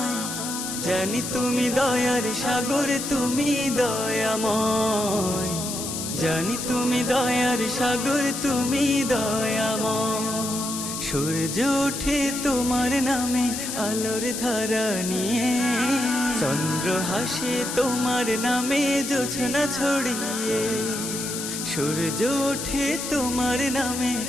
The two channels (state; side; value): noise; left; hiss, 5 dB below the sound